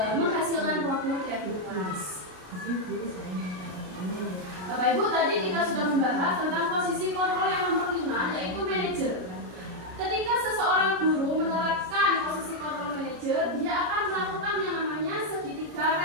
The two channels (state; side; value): late; left; 33 ms